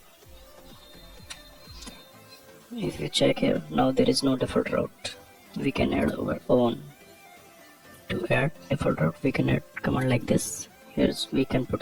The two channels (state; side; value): identical; both; correlation 1.00